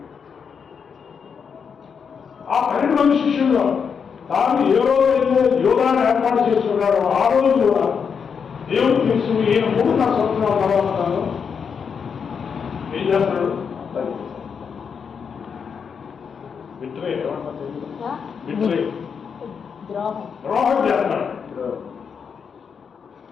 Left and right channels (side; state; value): right; quieter; 6.5 dB